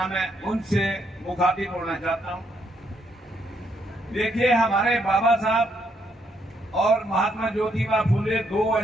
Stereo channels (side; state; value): both; normal; correlation 0.74